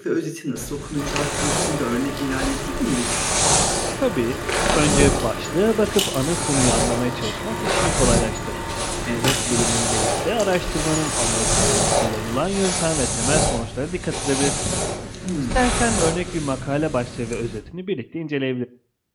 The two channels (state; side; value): identical; both; correlation 1.00